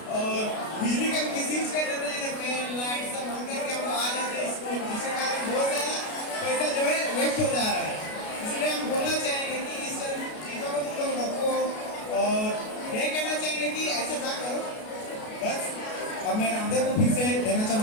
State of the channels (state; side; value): late; right; 33 ms